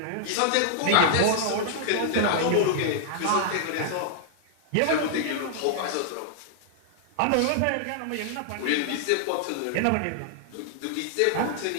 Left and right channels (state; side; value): different; both; correlation -0.01